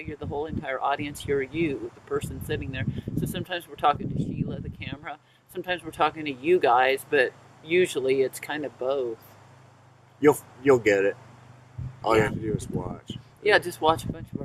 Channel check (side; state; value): both; identical; correlation 1.00